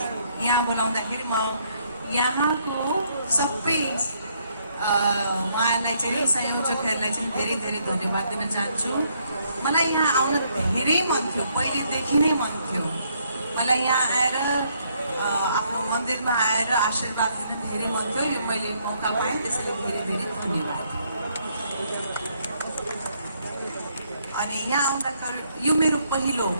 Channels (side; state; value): both; inverted; correlation -0.71